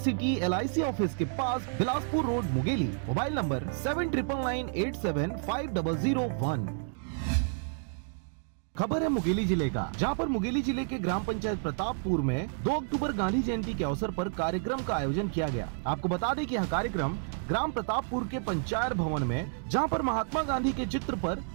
LIC ऑफिस के पास, Bilaspur road, Mungeli. Mobile number 7999875001। खबर है मुंगेली जिले का, जहां पर मुंगेली जिले के ग्राम पंचायत प्रतापपुर में 2 अक्टूबर गांधी जयंती के अवसर पर कार्यक्रम का आयोजन किया गया। आपको बता दें कि यह कार्यक्रम ग्राम प्रतापपुर के पंचायत भवन में, जहां पर महात्मा गांधी के चित्र पर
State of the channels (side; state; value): left; silent; digital silence